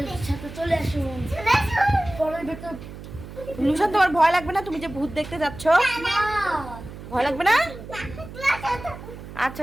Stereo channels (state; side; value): noise; right; hum, 13 dB below the sound